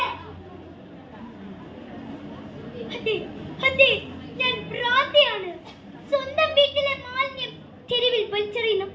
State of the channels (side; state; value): both; identical; correlation 1.00